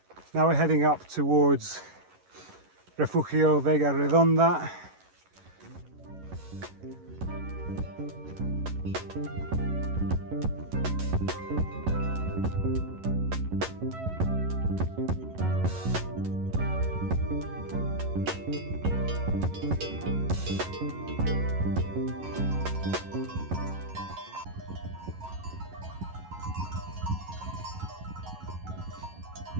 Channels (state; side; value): late; left; 11 ms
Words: Now we're heading up towards Refugio Vega Redonda.